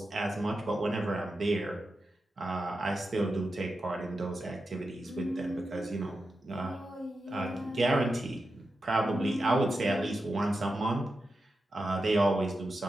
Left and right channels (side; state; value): both; normal; correlation 0.90